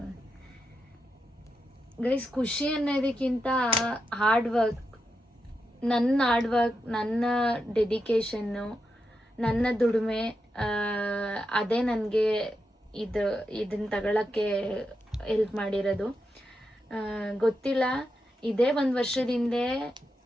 ಗೈಸ್, ಖುಷಿ ಅನ್ನೋದಕ್ಕಿಂತ ಹಾರ್ಡ್ ವರ್ಕ್, ನನ್ನ ಡೆಡಿಕೇಶನ್ನು, ನನ್ನ ದುಡಿಮೆ, ಅದೇ ನನಗೆ ಇದನ್ನು ತಗೊಳ್ಳೋಕ್ಕೆ ಹೆಲ್ಪ್ ಮಾಡಿರೋದು. ಗೊತ್ತಿಲ್ಲ, ಇದೇ 1 ವರ್ಷದ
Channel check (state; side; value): normal; both; correlation 0.86